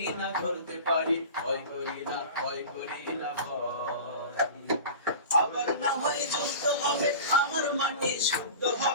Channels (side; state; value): both; inverted; correlation -0.35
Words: ধরতে পারি ভয় করি না ভয় করি না ভয় আবার না হয় যুদ্ধ হবে আমার মাটি শুদ্ধ